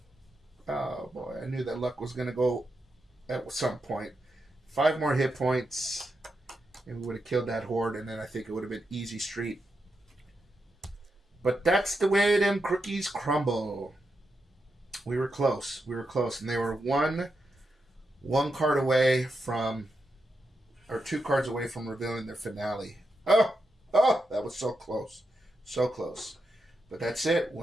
Oh boy, I knew that luck was going to go at some point. 5 more hit points and we would have killed that horde, and then I think it would have been easy street. But that's the way them cookies crumble. We were close. And they were one card away from, or 2 cards away from revealing their finale. Oh, that was so close. So close. But that's it.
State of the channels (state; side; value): normal; both; correlation 0.86